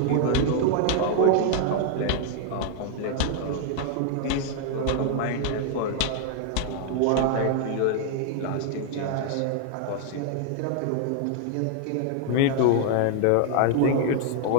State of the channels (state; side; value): different; both; correlation 0.00